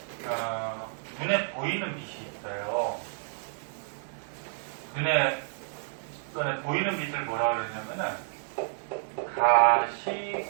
눈에 보이는 빛이 있어요. 눈에 보이는 빛을 뭐라 그러냐면은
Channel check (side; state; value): left; silent; digital silence